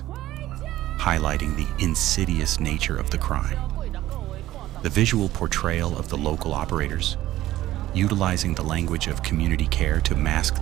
highlighting the insidious nature of the crime. The visual portrayal of the local operators, utilizing the language of community care to mask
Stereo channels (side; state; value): left; quieter; 14.8 dB